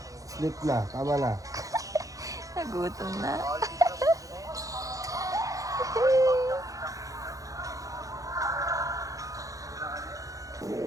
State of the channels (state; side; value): late; left; 0.16 ms